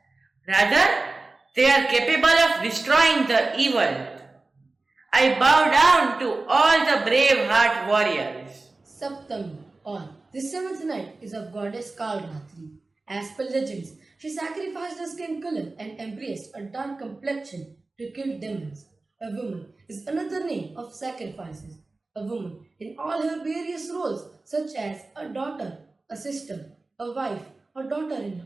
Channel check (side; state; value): left; quieter; 3.4 dB